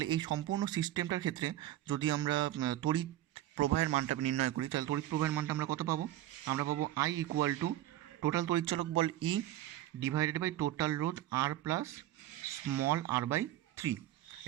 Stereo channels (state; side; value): quieter; left; 13.8 dB